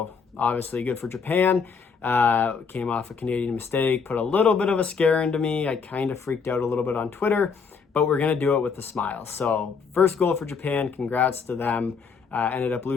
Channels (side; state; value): right; quieter; 5.6 dB